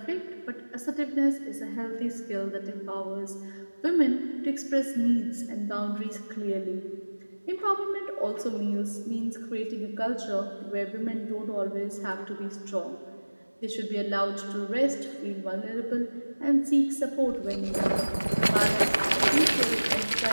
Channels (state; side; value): inverted; both; correlation -1.00